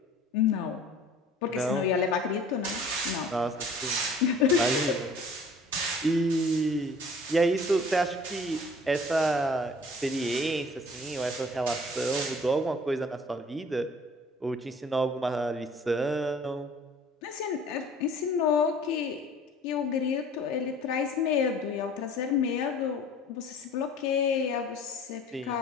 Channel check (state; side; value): normal; both; correlation 0.50